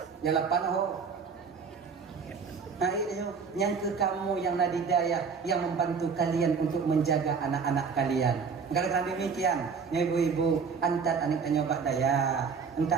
yang 8 oh. Nah itu yang ke kamu yang nadidayah yang membantu kalian untuk menjaga anak-anak kalian. Kalau kalian demikian, ya ibu-ibu, antat anak nyoba daya, entak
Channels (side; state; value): left; quieter; 5.6 dB